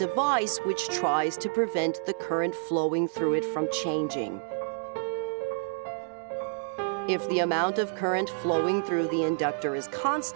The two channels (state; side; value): silent; left; digital silence